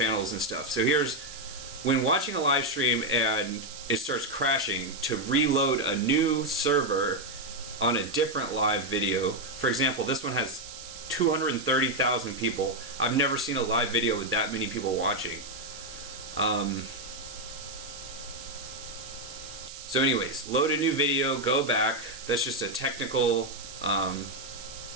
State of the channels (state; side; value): noise; right; hiss, 13 dB below the sound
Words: and stuff. So here's, when watching a live stream and it starts crashing, to reload a new server on a different live video. For example, this one has 230,000 people. I've never seen a live video with that many people watching. So anyways, load a new video, go back. That's just a technical,